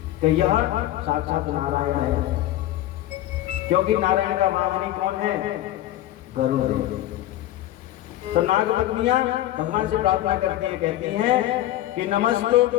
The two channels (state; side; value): quieter; right; 14.1 dB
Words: कि यह साक्षात नारायण है, क्योंकि नारायण का वाहनी कौन है? गरुड़। तो नाग पत्नियां भगवान से प्रार्थना करती हैं, कहती हैं कि